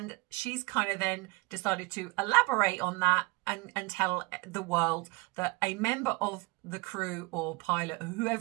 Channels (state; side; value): quieter; left; 25.7 dB